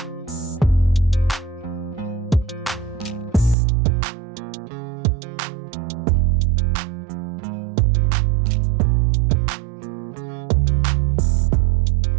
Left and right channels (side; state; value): left; drops out; at 3.6 s